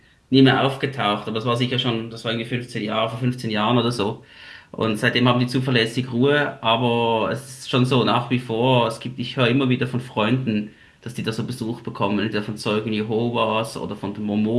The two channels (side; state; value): both; identical; correlation 1.00